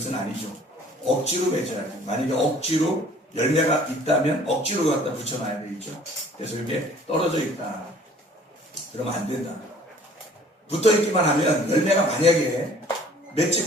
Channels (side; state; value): both; normal; correlation 0.53